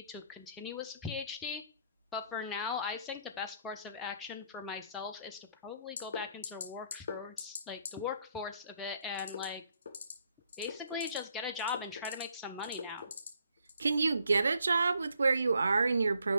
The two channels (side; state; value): both; inverted; correlation -0.70